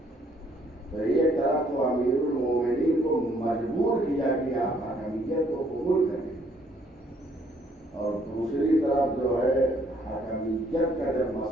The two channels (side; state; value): both; normal; correlation 0.66